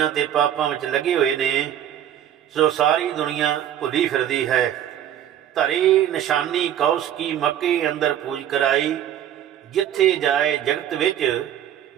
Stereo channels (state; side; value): quieter; left; 10.7 dB